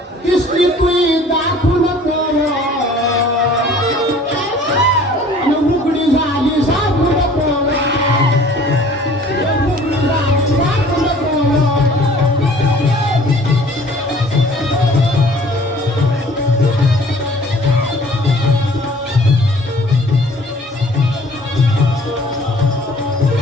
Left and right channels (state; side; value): normal; both; correlation 0.51